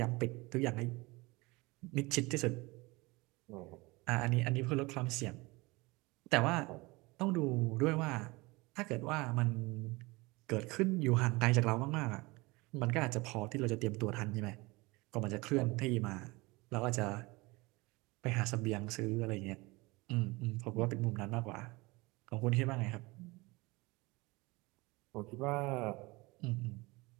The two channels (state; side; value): quieter; left; 23.7 dB